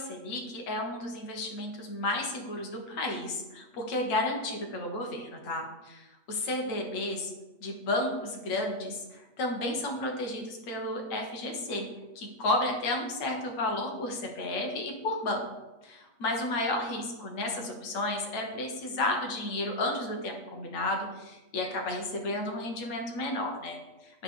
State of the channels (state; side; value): late; right; 8.4 ms